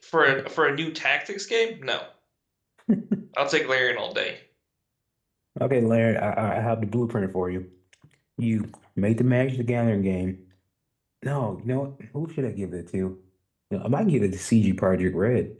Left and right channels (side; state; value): both; identical; correlation 1.00